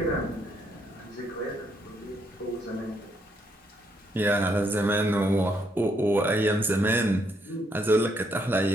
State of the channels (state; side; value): normal; both; correlation 0.74